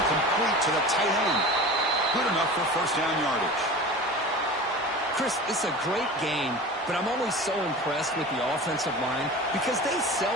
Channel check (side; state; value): both; normal; correlation 0.35